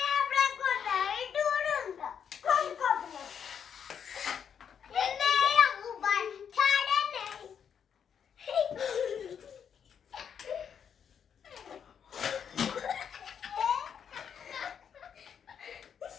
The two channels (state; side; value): quieter; right; 7.7 dB